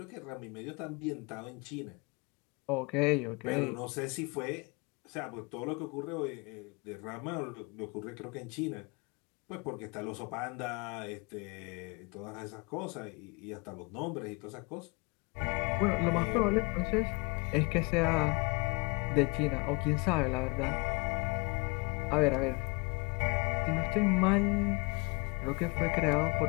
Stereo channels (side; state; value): right; quieter; 29.0 dB